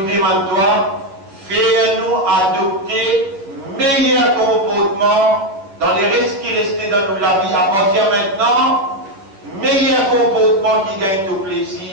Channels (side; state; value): left; late; 10 ms